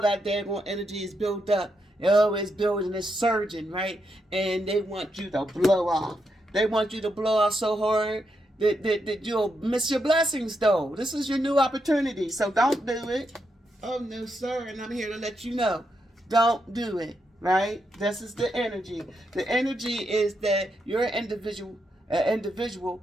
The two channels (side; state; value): both; normal; correlation 0.82